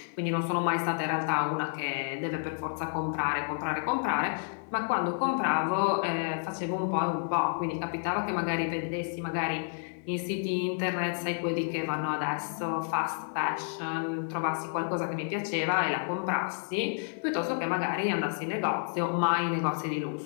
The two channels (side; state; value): right; silent; digital silence